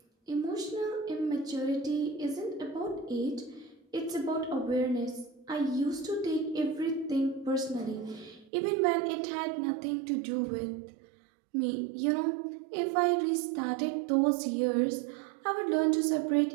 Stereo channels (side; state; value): left; drops out; at 8.5 s